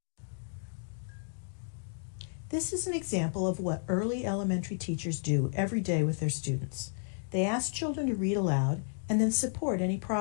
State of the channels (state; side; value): silent; right; digital silence